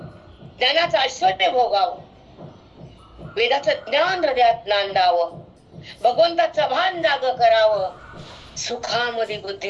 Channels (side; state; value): both; identical; correlation 1.00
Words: ज्ञानाचं ऐश्वर्य भोगावं, वेदाचं ज्ञान हृदयात नांदावं, भगवंताचं भान जाग करावं, सुखामध्ये